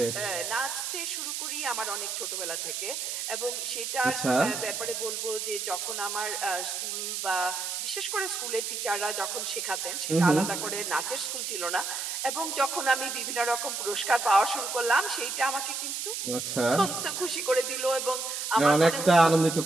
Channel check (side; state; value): right; noise; hiss, 3 dB below the sound